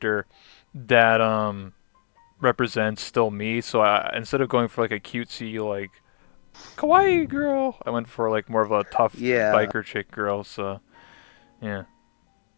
that represents still me. So I instead of going for like a cutesy like kawaii girl, I went for like more of a tough Yeah. biker chick girl. So yeah,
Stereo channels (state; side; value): silent; right; 62 dB below the other